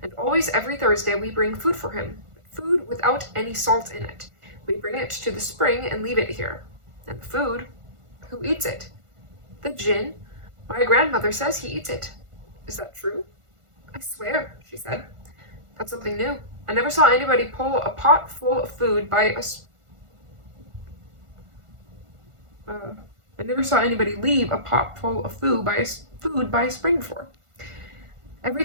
and always every Thursday we bring food for him, food without any salt in it. We bring it to the spring and leave it here. And the food, who eats it?" "The djinn. My grandmother says he eats it." "Is that true?" "I swear," she said. "That's something new. I never saw anybody pull a pot full of food by a I never saw anybody leave a pot full of food by a spring before. Every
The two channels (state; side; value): late; left; 1.5 ms